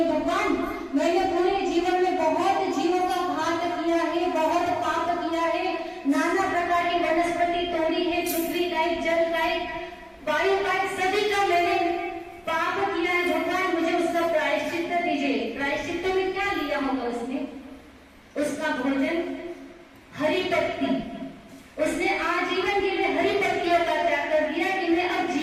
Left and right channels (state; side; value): identical; both; correlation 1.00